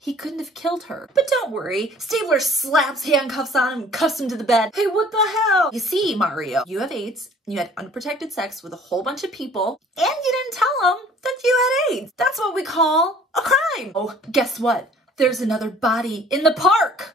couldn't have killed her. But don't worry, Stabler slaps handcuffs on him and cuffs him to the bed. Hey, what the hell? You see, Mario, you have AIDS, and you had unprotected sex with a whole bunch of people, and you didn't tell them that you had AIDS. That's what we call a crime. Oh, guess what? There's another body in the park.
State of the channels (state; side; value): normal; both; correlation 0.53